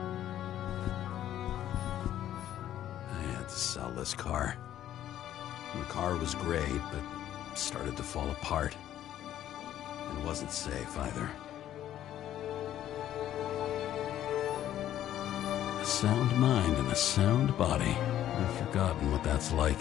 I had to sell this car. The car was great, but started to fall apart. It wasn't safe either. A sound mind and a sound body. I've forgotten what that's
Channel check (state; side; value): quieter; right; 11.9 dB